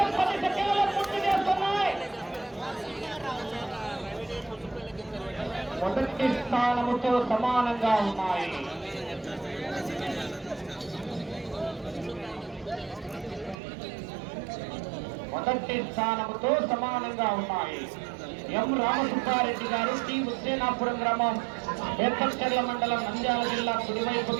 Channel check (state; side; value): drops out; left; at 13.6 s